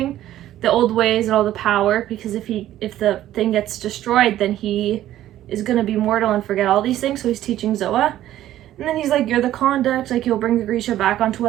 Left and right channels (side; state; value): left; quieter; 13.1 dB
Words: the old ways and all the power, because if the thing gets destroyed, then he is gonna be mortal and forget all these things. So he's teaching Zoa, and then he's like, you're the conduct, like you'll bring the Grisha back onto